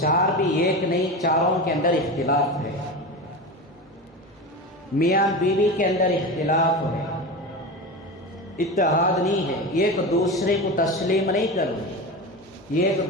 بھی ایک نہیں، چاروں کے اندر اختلاف ہے۔ میاں بیوی کے اندر اختلاف ہے، اتحاد نہیں ہے، ایک دوسرے کو تسلیم نہیں کر رہے، ایک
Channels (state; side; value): normal; both; correlation 0.25